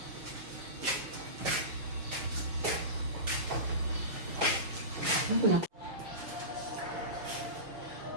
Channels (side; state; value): left; late; 6.3 ms